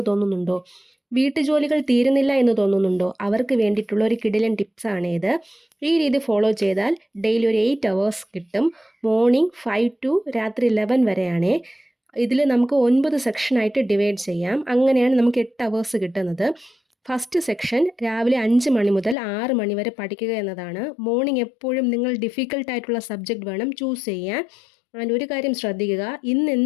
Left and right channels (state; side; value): drops out; right; at 19.2 s